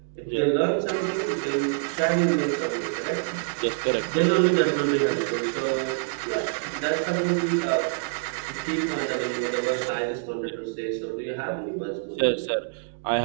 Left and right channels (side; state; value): left; silent; digital silence